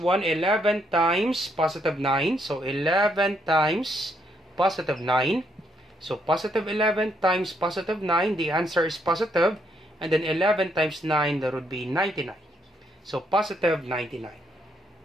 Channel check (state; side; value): normal; both; correlation 0.74